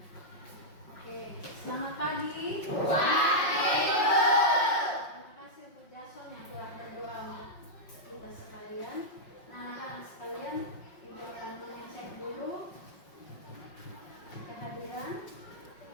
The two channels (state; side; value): late; right; 5.5 ms